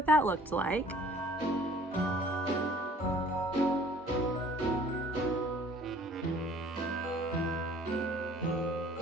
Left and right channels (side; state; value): both; normal; correlation 0.53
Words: that looked like.